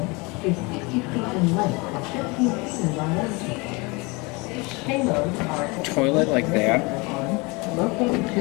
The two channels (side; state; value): right; quieter; 27.0 dB